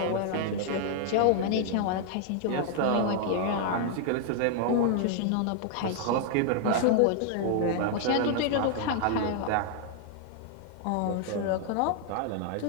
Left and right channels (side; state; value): both; different; correlation 0.00